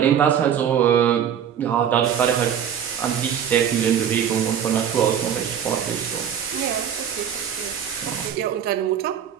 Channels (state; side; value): quieter; left; 8.7 dB